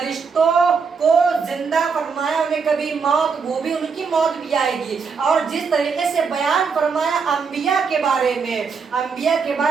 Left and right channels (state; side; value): quieter; left; 5.5 dB